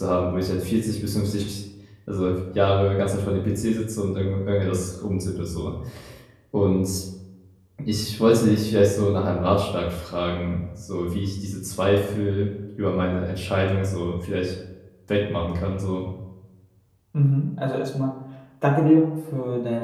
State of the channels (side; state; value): both; identical; correlation 1.00